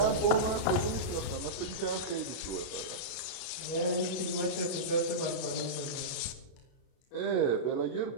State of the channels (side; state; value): right; late; 33 ms